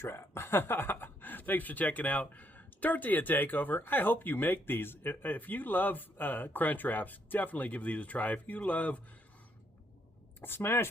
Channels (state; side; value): normal; both; correlation 0.73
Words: Thanks for checking out Tortilla Takeover. I hope you make these. If you love crunch wraps, definitely give these a try. If you love